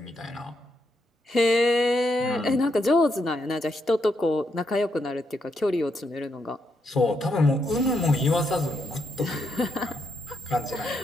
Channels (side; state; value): both; normal; correlation 0.79